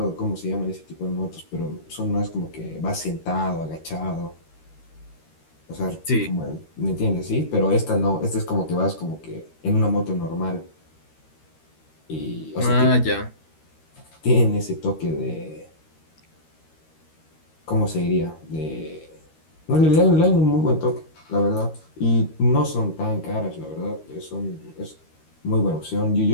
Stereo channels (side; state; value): right; late; 13 ms